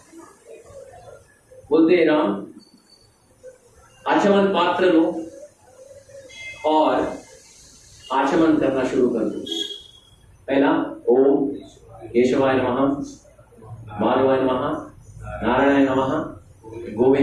बोलते, राम आचमन पात्र लो और आचमन करना शुरू कर दो। पहला ओम केशवाय नमः, माधवाय नमः, नारायणाय नमः,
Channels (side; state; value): both; identical; correlation 1.00